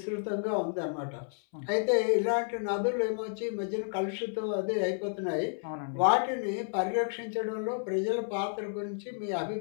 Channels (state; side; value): silent; right; 57 dB below the other